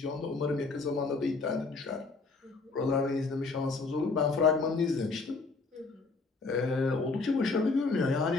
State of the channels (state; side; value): quieter; right; 4.0 dB